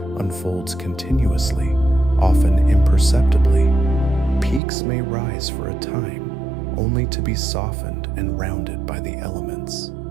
unfolds continuously, often imperceptibly. Peaks may rise for a time, only to be softened and rounded by the elements.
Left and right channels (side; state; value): left; drops out; at 4.6 s